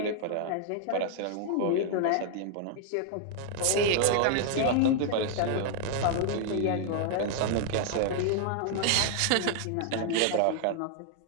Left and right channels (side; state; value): both; different; correlation 0.00